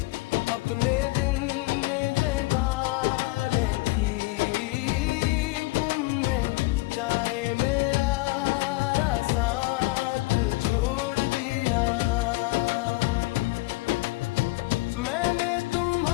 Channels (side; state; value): right; quieter; 21.8 dB